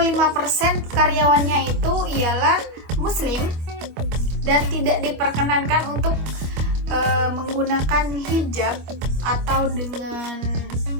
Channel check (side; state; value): left; late; 25 ms